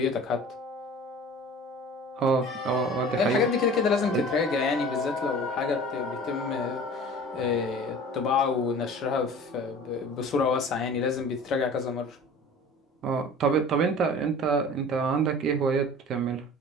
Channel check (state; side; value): normal; both; correlation 0.42